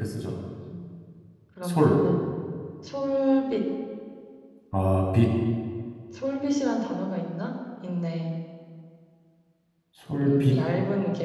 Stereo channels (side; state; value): both; identical; correlation 1.00